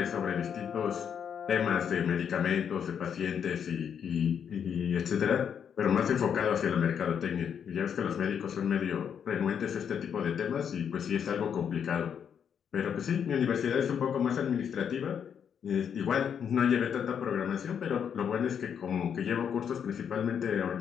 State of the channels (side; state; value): right; quieter; 7.9 dB